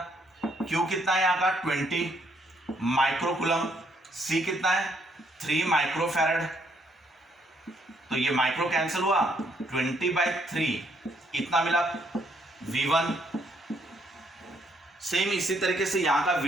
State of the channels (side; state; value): both; normal; correlation 0.71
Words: Q कितना है यहाँ का? 20 माइक्रोकूलम। C कितना है? 3 माइक्रोफैरड। तो ये माइक्रो कैंसिल हुआ, 20/3 इतना मिला V1। सेम इसी तरीके से यहां का